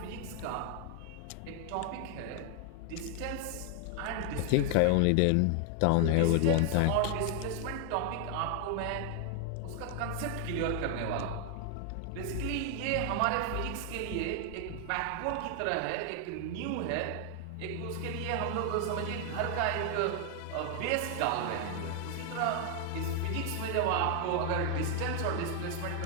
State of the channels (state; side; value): different; both; correlation 0.00